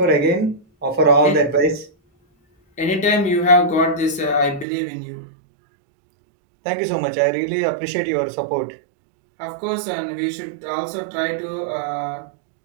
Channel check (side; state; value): left; drops out; at 4.7 s